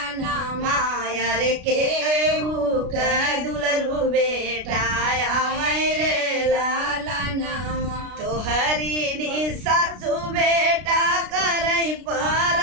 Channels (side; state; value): left; late; 33 ms